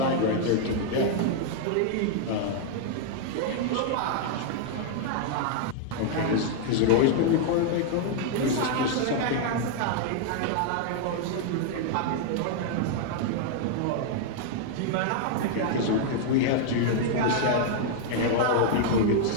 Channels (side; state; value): both; different; correlation 0.00